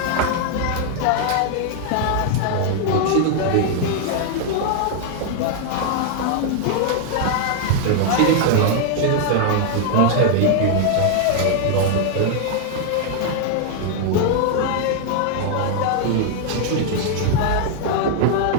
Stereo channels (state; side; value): different; both; correlation 0.00